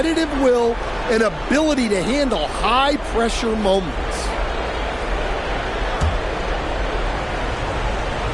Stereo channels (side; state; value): both; identical; correlation 1.00